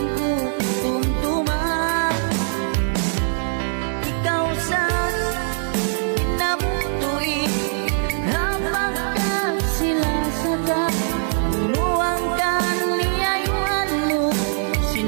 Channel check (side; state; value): left; silent; 64 dB below the other